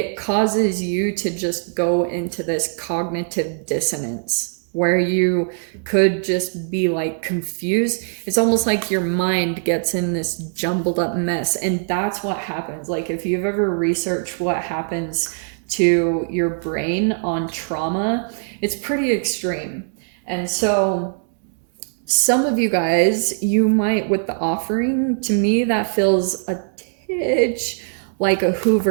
causes you to just go into this cognitive dissonance where you could just be like confused. It's almost like your mind gets in this jumbled up mess. And that's what happens. Like, if you've ever researched what happens to your brain on trauma, it's pretty extreme. And so some of you guys, you might, with the offering, to me, that feels a titch like a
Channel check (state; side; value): silent; left; digital silence